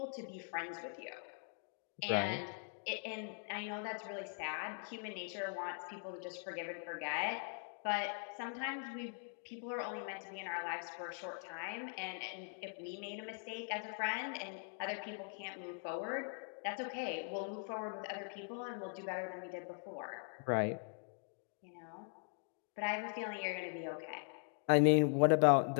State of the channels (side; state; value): right; silent; 50 dB below the other